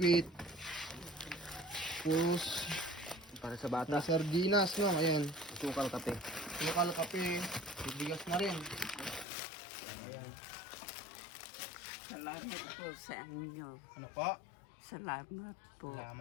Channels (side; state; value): right; drops out; at 9.2 s